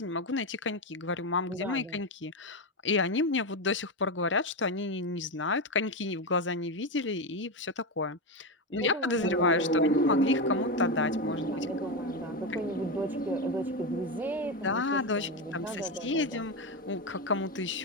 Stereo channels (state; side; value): normal; both; correlation 0.12